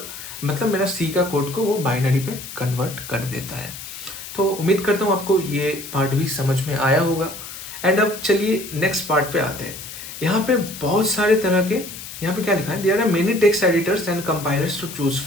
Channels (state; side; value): noise; left; hiss, 11 dB below the sound